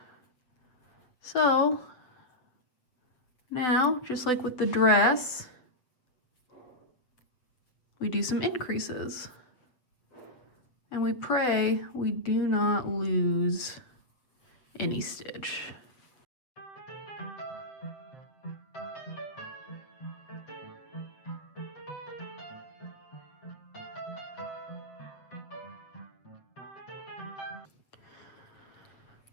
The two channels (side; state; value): right; late; 8.0 ms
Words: So now, just like with the dress, we do some increases. And we pray we do not lose any stitch.